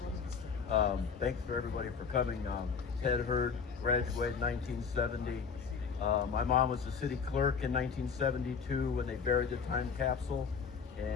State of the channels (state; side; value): quieter; right; 6.0 dB